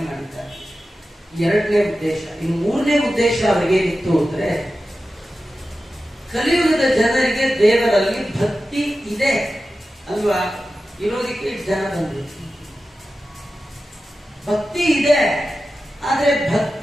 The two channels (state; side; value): normal; both; correlation 0.93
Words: ಮಾಡಿದ್ದಾರೆ. 2ನೇ ಉದ್ದೇಶ. ಇನ್ನು 3ನೇ ಉದ್ದೇಶ ಅವರಿಗೇನಿತ್ತು ಅಂದ್ರೆ, ಕಲಿಯುಗದ ಜನರಿಗೆ ದೇವರಲ್ಲಿ ಭಕ್ತಿ ಇದೆ ಅಲ್ವಾ, ಇರೋದಕ್ಕೆ ಜನ ಬಂದ್ರು. ಭಕ್ತಿ ಇದೆ, ಆದ್ರೆ